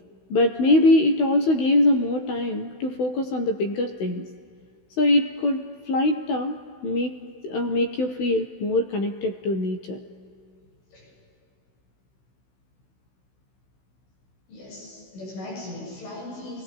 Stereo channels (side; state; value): right; late; 16 ms